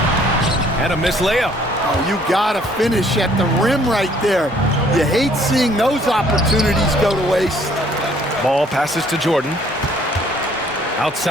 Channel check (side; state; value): both; normal; correlation 0.61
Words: And a missed layup. Oh, you got to finish at the rim right there. You hate seeing those opportunities go to waste. Ball passes to Jordan.